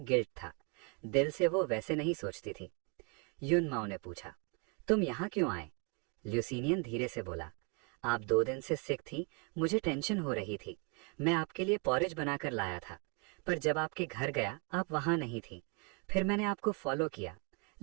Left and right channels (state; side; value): quieter; left; 35.0 dB